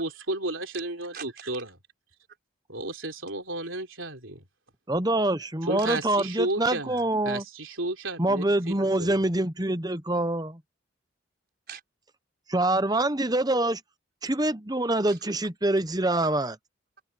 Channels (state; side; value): normal; both; correlation 0.53